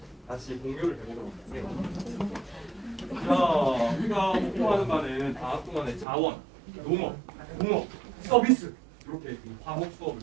다시 공유를 해보도록 할게요. 자, 우리가 공부하는 바는 방학 동안에 자원, 농업, 공업, 서비스 이렇게 과목 수업을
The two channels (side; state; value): left; drops out; at 6.1 s